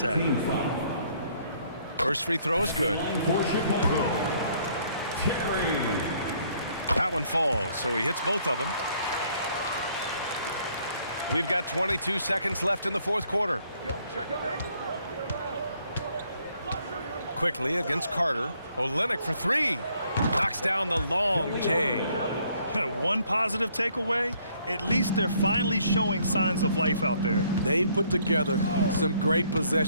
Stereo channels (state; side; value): inverted; both; correlation -0.65